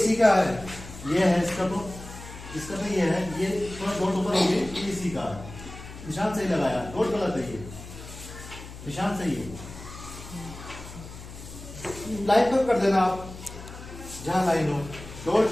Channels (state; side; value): noise; left; hum, 14 dB below the sound